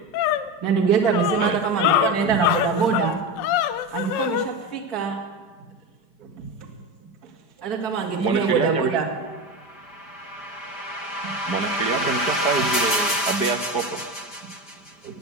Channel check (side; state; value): right; late; 5.0 ms